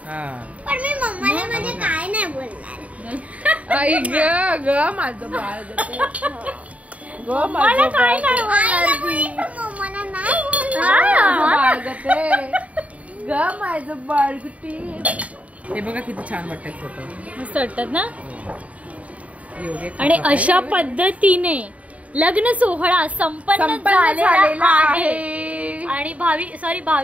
पण मी मम्माला म्हणजे काय नाही बोलणार. आई ग ग माझं बाळ ग मला काय नाही मम्माला नाही ग माझं बाळ गुटी. हे बघा किती छान वाटतात फोटो, मस्त वाटतात ना. आणि अशा पद्धतीने लग्न सोहळा संपन्न झालेला आहे. आणि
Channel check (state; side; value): late; left; 0.068 ms